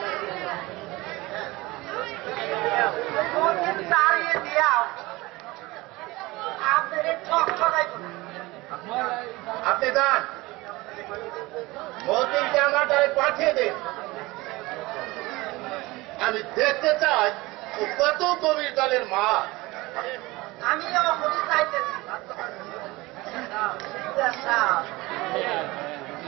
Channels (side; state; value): left; quieter; 21.3 dB